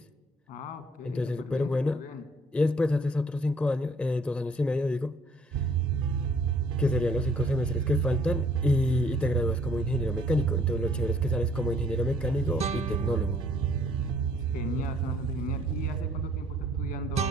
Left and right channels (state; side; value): normal; both; correlation 0.61